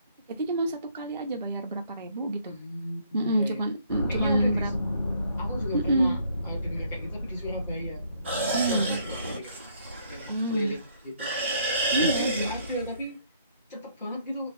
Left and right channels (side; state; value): both; inverted; correlation -0.66